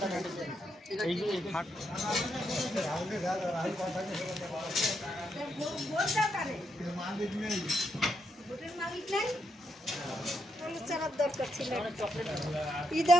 দরকার ছিল ই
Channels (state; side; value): normal; both; correlation 0.79